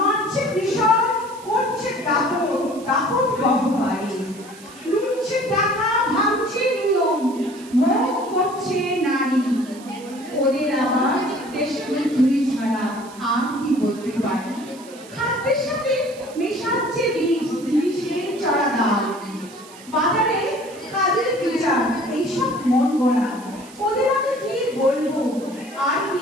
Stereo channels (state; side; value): noise; right; hiss, 20 dB below the sound